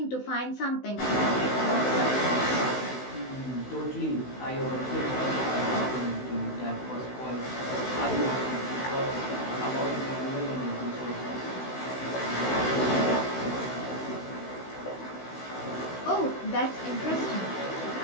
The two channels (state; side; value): late; right; 16 ms